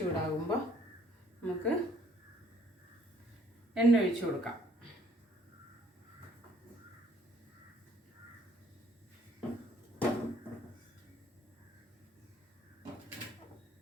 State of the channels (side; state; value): both; normal; correlation 0.62